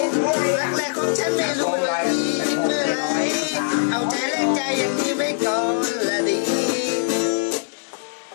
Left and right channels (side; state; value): right; silent; digital silence